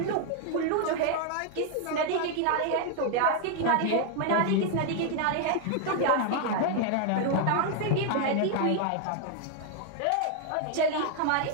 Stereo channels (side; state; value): both; different; correlation 0.00